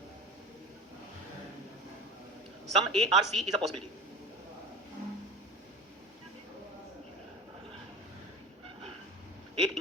some A are C is a possibility. एक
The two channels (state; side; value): normal; both; correlation 0.32